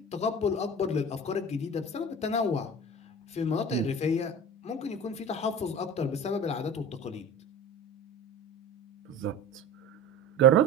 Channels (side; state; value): both; normal; correlation 0.35